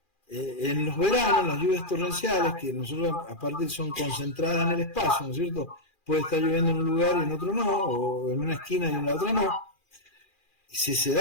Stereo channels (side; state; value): right; late; 2.4 ms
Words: En los veranos, las lluvias torrenciales, que nosotros aparte son concentradas en el espacio, ¿no es cierto? Puede estar lloviendo en un lugar y en otro no, o en una esquina y en la otra no. Si se